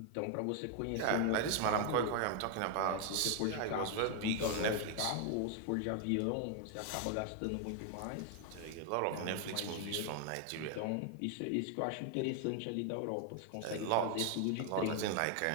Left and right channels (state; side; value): different; both; correlation 0.00